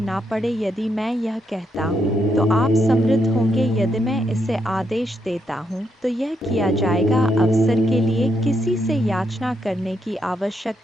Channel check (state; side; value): normal; both; correlation 0.79